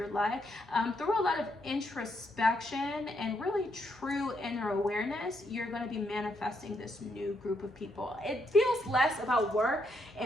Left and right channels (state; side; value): normal; both; correlation 0.77